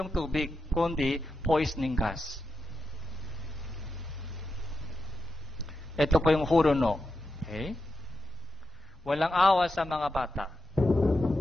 tubig, kundi poisoning gas. Ito po yung Hurono. Okay? Walang awa sa mga bata.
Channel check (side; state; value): both; normal; correlation 0.88